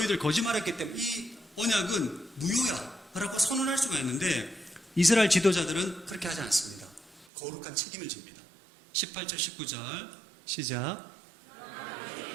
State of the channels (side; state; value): left; drops out; at 7.2 s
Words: 거짓말했기 때문에 이 언약은 무효야 라고 선언할 수가 있는데 이스라엘 지도자들은 그렇게 하지 않습니다. 거룩한 책임을 집니다. 18절 19절 시작.